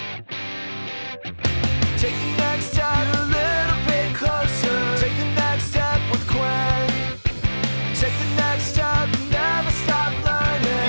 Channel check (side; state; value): both; inverted; correlation -1.00